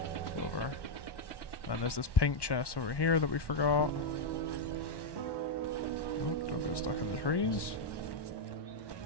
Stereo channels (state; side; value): late; right; 1.1 ms